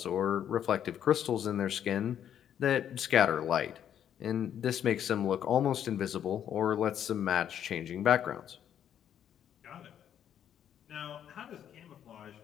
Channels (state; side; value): quieter; right; 9.7 dB